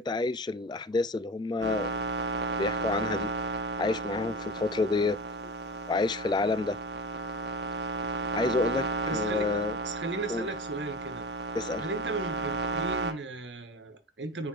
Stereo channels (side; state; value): both; normal; correlation 0.30